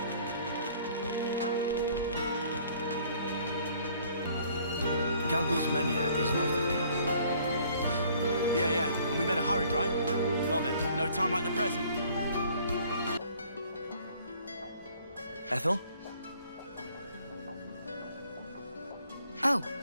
Galgul's Mania is north of here. Yeah, and we better hurry, right? Well then, no time like the present. Ethel? Oh,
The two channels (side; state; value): both; inverted; correlation -0.58